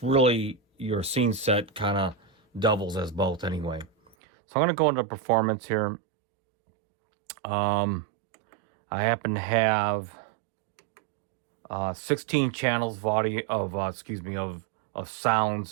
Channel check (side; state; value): left; drops out; at 4.2 s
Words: really your scene set kind of doubles as both anyway. So I'm going to go into performance here. I happen to have 16 channels of audio of